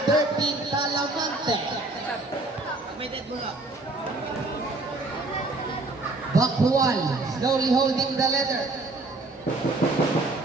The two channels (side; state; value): left; quieter; 3.1 dB